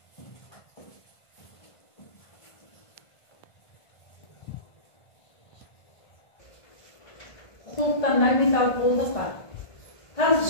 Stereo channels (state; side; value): late; right; 1.5 ms